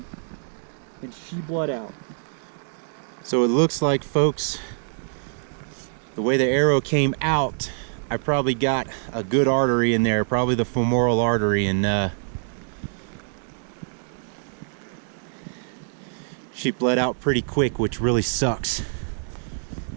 and she bled out. So it looks like, folks, the way the arrow came out, I probably got a good artery in there, probably the femoral artery, and she bled out pretty quick, which really sucks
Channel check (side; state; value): left; silent; digital silence